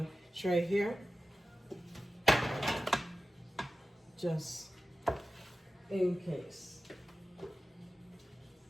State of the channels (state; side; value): normal; both; correlation 0.95